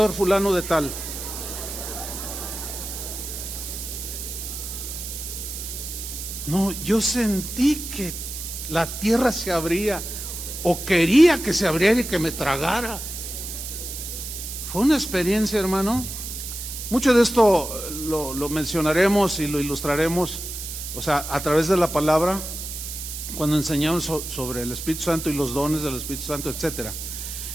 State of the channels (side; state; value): right; noise; hiss, 7 dB below the sound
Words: fulano de tal. No, yo sentí que la tierra se abría, o quería que se abriera y que me tragara. Fue una experiencia, hermano. Mucho de esto lo mencionaremos y lo ilustraremos, o sea, a través de la palabra, cuando enseñamos sobre el Espíritu Santo y los dones del Espíritu Santo, etcétera.